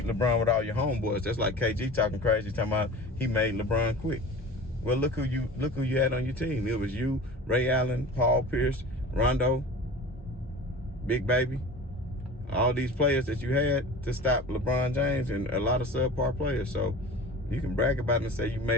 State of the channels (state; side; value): normal; both; correlation 0.37